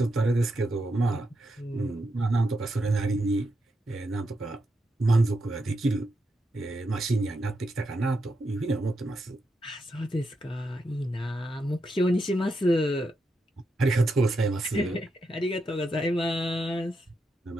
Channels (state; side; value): normal; both; correlation 0.84